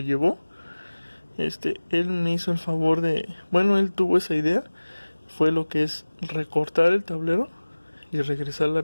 llevó. Él me hizo el favor bueno, él tuvo esa idea. Fue lo que es recortar el tablero y regresar la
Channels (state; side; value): inverted; both; correlation -1.00